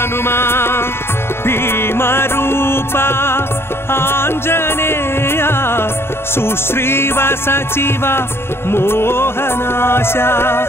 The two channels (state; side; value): late; right; 0.12 ms